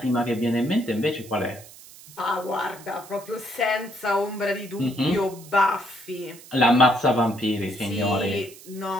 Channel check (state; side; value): noise; right; hiss, 19 dB below the sound